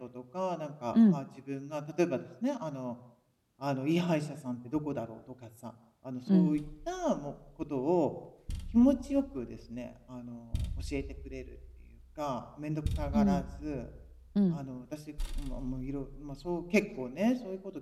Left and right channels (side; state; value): both; identical; correlation 1.00